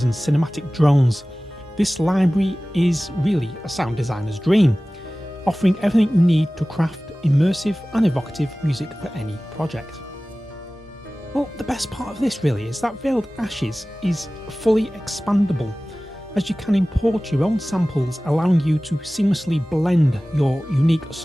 and cinematic drones. This library is really a sound designer's dream, offering everything you need to craft immersive and evocative music for any project. Well, the best part of this really is that Veiled Ashes is fully expandable, as you can import your own samples, allowing you to seamlessly blend your unique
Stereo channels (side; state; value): both; normal; correlation 0.97